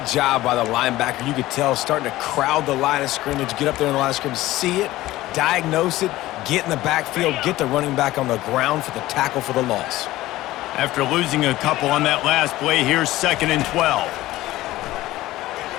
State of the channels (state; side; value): quieter; right; 16.7 dB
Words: job by the linebacker. You could tell starting to crowd the line of scrimmage, get up there in the line of scrimmage, see it, diagnose it, get in the backfield, get the running back on the ground for the tackle for the loss. After losing a couple on that last play, here's 2nd and 12.